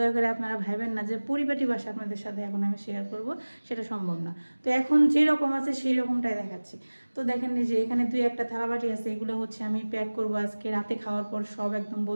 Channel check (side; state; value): both; inverted; correlation -1.00